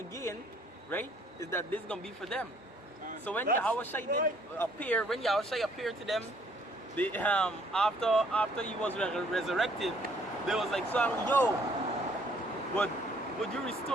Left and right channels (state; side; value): normal; both; correlation 0.62